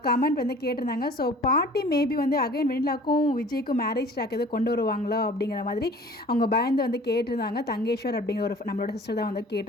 கமெண்ட் வந்து கேட்டிருந்தாங்க. ஸோ பாட்டி மேபி வந்து அகைன் வெண்ணிலாக்கும் விஜய்க்கும் மேரேஜ் ட்ராக் எதுவும் கொண்டு வருவாங்களோ அப்படிங்கிற மாதிரி அவங்க பயந்து வந்து கேட்டிருந்தாங்க. தங்கேஸ்வர் அப்படிங்கிற ஒரு நம்மளோட சிஸ்டர் தான் வந்து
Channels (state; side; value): normal; both; correlation 0.47